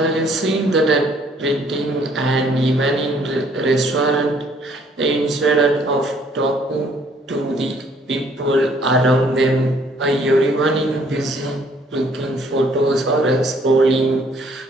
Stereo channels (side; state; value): both; normal; correlation 0.62